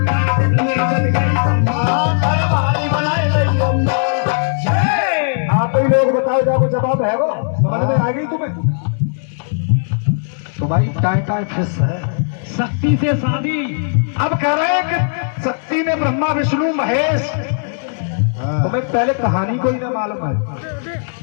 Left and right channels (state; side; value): silent; right; digital silence